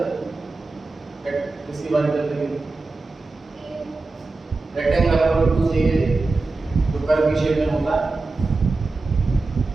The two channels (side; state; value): left; quieter; 3.5 dB